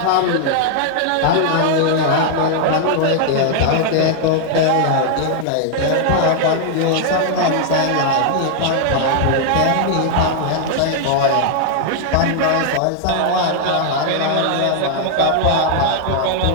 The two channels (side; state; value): both; different; correlation 0.00